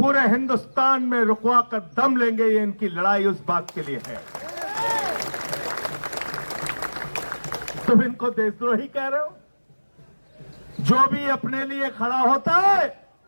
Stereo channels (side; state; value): both; inverted; correlation -1.00